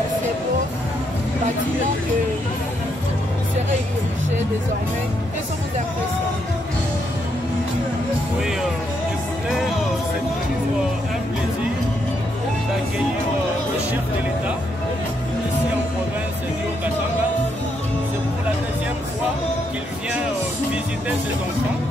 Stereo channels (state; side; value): normal; both; correlation 0.77